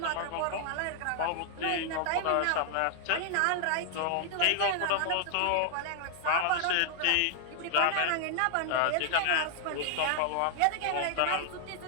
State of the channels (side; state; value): both; different; correlation 0.00